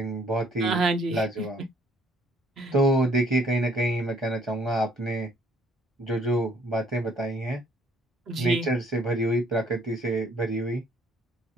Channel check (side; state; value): both; normal; correlation 0.62